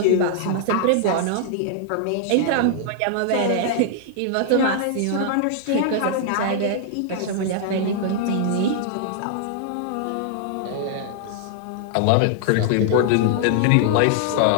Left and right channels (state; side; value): different; both; correlation -0.01